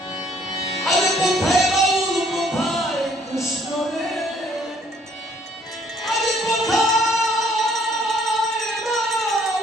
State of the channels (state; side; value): normal; both; correlation 0.63